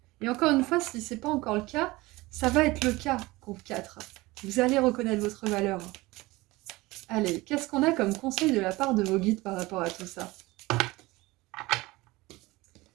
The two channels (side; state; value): left; quieter; 20.8 dB